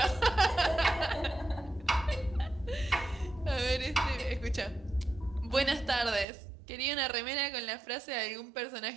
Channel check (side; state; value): left; drops out; at 6.2 s